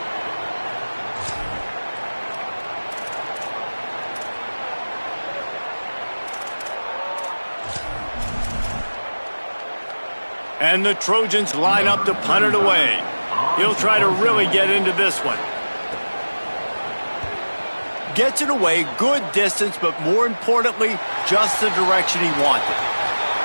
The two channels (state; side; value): inverted; both; correlation -1.00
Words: And the Trojans line up to punt it away. He'll try to really get into this one. Gets it away, good distance, but more importantly, just the direction he wanted.